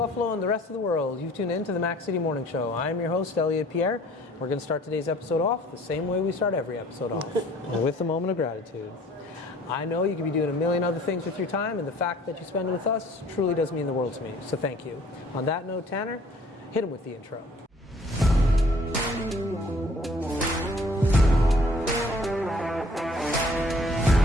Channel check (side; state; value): both; normal; correlation 0.55